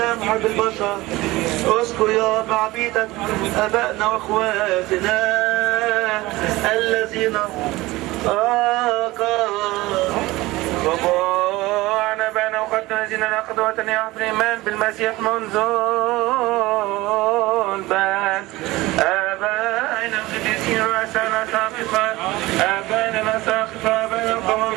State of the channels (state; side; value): quieter; left; 19.5 dB